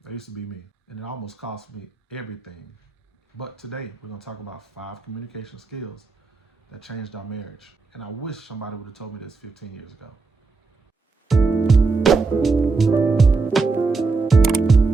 that used to be me. And it almost cost me everything. But today we're gonna talk about 5 communication skills that changed our marriage. And I wish somebody would have told me this 15 years ago.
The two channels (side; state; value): left; quieter; 4.1 dB